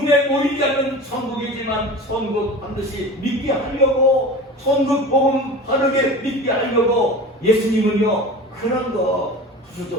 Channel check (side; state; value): both; normal; correlation 0.35